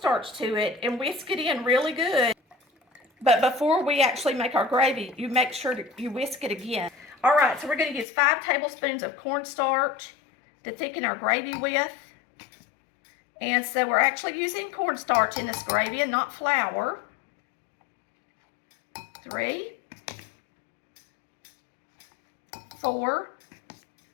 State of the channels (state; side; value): drops out; right; at 8.1 s